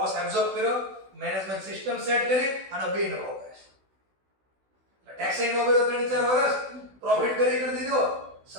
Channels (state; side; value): late; left; 16 ms